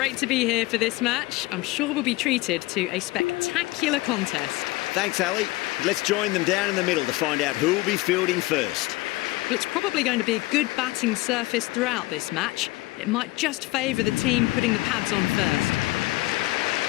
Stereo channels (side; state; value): right; quieter; 20.6 dB